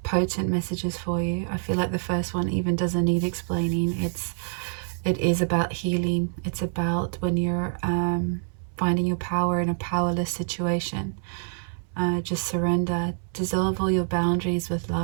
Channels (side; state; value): left; silent; 61 dB below the other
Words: potent messages for you. I feel like the first one even doesn't need explaining. It is about healing. It's about when you're finding your power in a powerless situation. Just surrender. Dissolve all your boundaries with